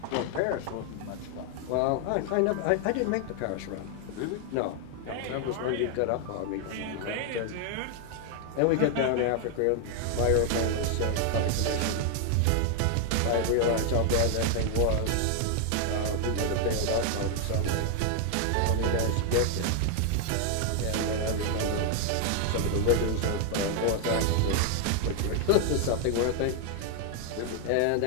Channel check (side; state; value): both; different; correlation 0.00